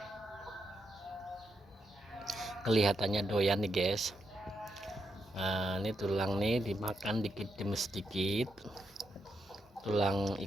kelihatannya doyan nih guys. Nah, ini tulang nih dimakan dikit demi sedikit, tulang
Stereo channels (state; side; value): normal; both; correlation 0.82